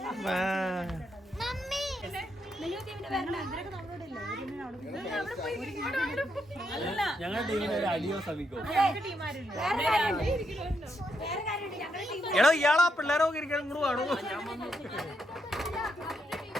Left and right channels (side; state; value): both; normal; correlation 0.79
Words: ഞങ്ങളുടെ ടീമിന് ഒരു അടിയോ ശ്രമിക്കോ? എടോ ഇയാളാ പിള്ളേരൊക്കെ ഇരിക്കണം ഇങ്ങോട്ട് വേണോ?